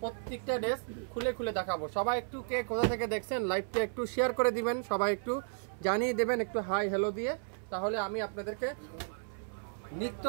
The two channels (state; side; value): silent; left; 55 dB below the other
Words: প্রত্যেকটা ড্রেস খুলে খুলে দেখাবো। সবাই একটু কে কোথা থেকে দেখছেন লাইভটা একটু শেয়ার করে দিবেন, সবাই একটু জানিয়ে দেবেন একটু হাই হ্যালো দিয়ে, তাহলে আমি আপনাদেরকে নিত্য